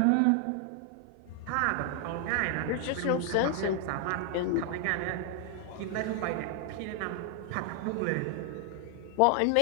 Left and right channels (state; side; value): different; both; correlation 0.00